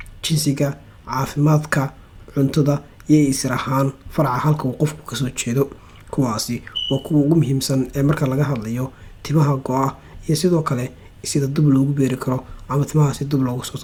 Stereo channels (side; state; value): both; identical; correlation 1.00